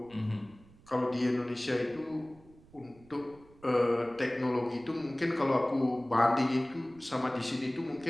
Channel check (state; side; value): noise; right; rumble, 25 dB below the sound